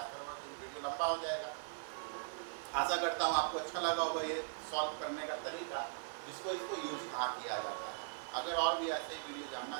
करूँगा, तो वीडियो लंबा हो जाएगा। आशा करता हूँ आपको अच्छा लगा होगा ये सॉल्व करने का तरीका, इसको यूज कहाँ किया जाता है। अगर और भी ऐसे वीडियो जानना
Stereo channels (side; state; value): left; silent; 51 dB below the other